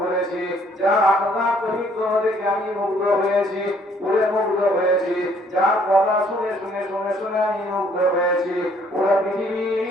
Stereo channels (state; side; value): normal; both; correlation 0.63